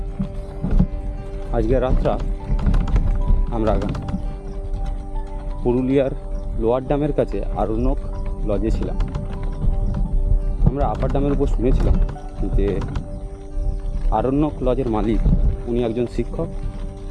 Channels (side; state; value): both; identical; correlation 1.00